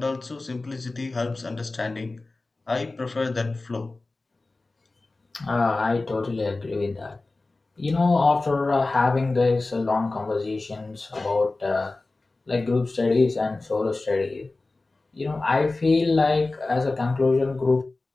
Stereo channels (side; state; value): right; quieter; 3.3 dB